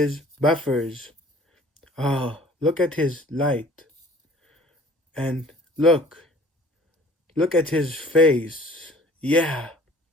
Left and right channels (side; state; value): both; normal; correlation 0.51